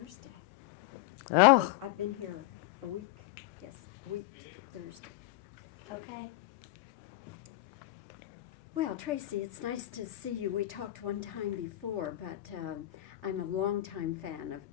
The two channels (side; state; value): right; quieter; 16.8 dB